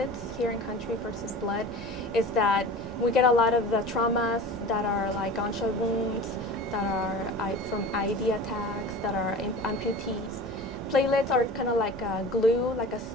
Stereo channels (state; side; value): noise; right; rumble, 16 dB below the sound